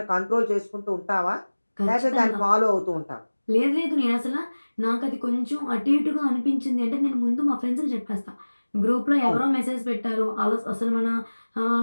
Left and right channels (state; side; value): inverted; both; correlation -1.00